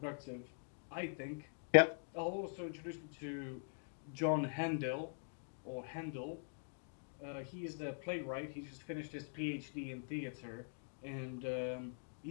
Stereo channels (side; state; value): right; silent; digital silence